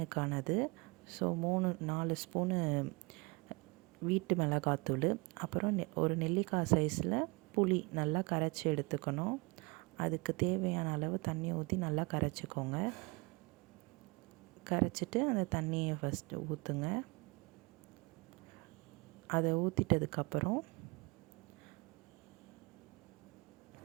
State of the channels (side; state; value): left; quieter; 27.7 dB